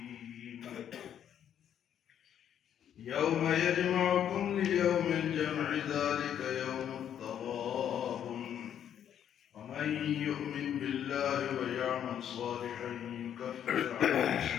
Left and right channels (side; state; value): right; quieter; 9.6 dB